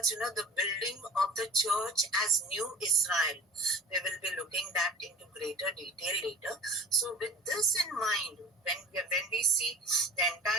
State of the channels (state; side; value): normal; both; correlation 0.38